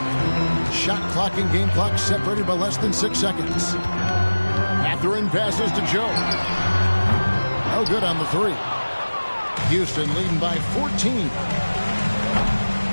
Shot clock and game clock separated by less than 6 seconds. Mathurin passes to Joe. No good on the 3. Houston leading by 14.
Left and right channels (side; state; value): both; inverted; correlation -1.00